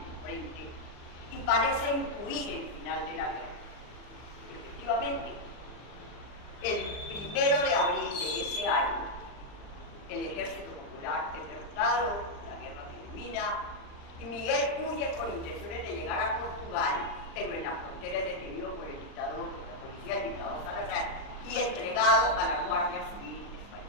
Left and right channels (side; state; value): right; late; 39 ms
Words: frente y parece intuir el final de la guerra. Efectivamente, el 1 de abril de ese año, el Ejército Popular es derrotado, la guerra termina, y Miguel huye con intenciones de llegar a Portugal, pero en la frontera es detenido por el dictador, por la policía, el dictador Salazar, y entregado a la Guardia Civil